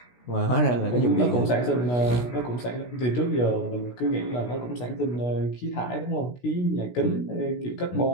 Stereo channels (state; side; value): late; right; 16 ms